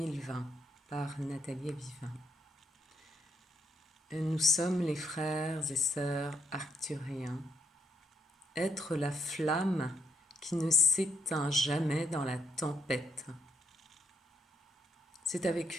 par Nathalie Vivin. Nous sommes les frères et sœurs arcturiens, être la flamme qui ne s'éteint jamais dans la tempête. C'est avec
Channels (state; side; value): normal; both; correlation 0.75